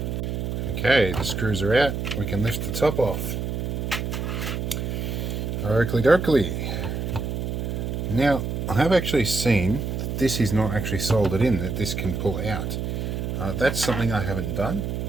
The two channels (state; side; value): noise; right; hum, 3 dB below the sound